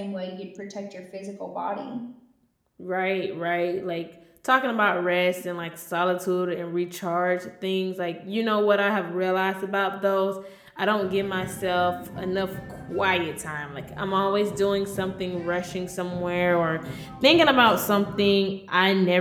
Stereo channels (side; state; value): both; identical; correlation 1.00